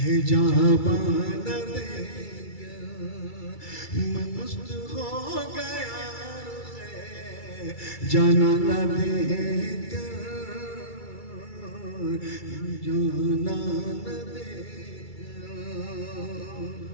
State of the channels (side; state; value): right; late; 2.3 ms